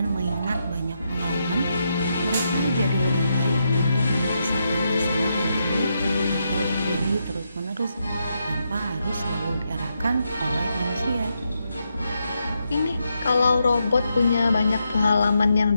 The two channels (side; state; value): both; inverted; correlation -0.82